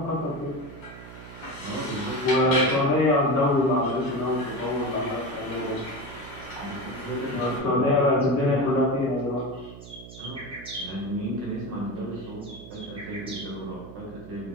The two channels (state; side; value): noise; right; hum, 15 dB below the sound